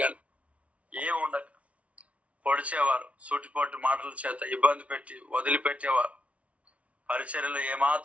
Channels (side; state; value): left; late; 0.064 ms